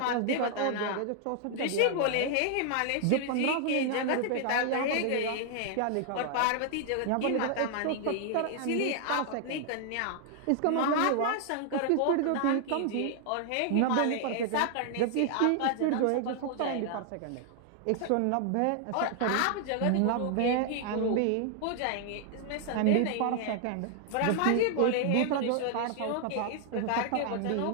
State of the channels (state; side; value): different; both; correlation 0.00